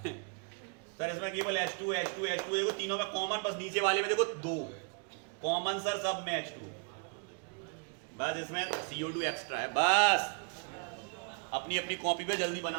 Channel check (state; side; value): quieter; left; 38.1 dB